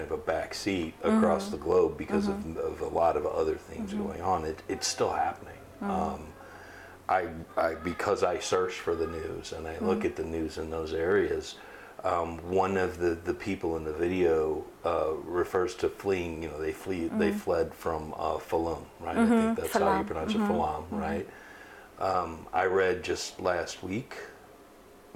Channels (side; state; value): both; identical; correlation 1.00